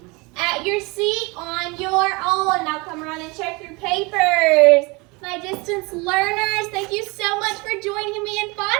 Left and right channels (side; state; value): left; quieter; 26.6 dB